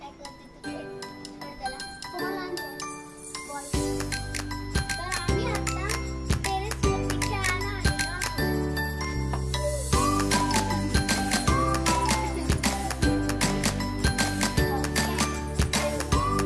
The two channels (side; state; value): both; identical; correlation 1.00